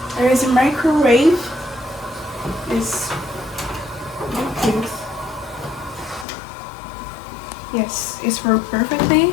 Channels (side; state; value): right; drops out; at 6.2 s